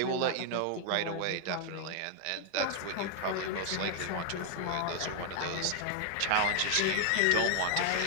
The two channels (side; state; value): both; different; correlation 0.00